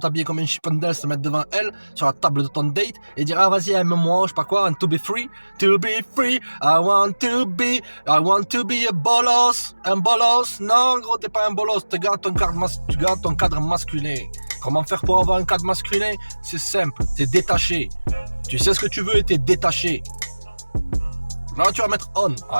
comme un chippendale, te mettre devant elle, sur la table de ton date, et dire, ah vas-y, aime-moi, je sais pas quoi, and to be free, I want to be a bolos. Un bolos? Non, gros, t'es pas un bolos, tu gardes ton cadre masculin. Comment faire pour avoir un cadre masculin? C'est simple, t'es détaché. Tu sais ce que tu veux et t'es détaché. Là, tu vas mettre on.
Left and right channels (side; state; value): both; inverted; correlation -1.00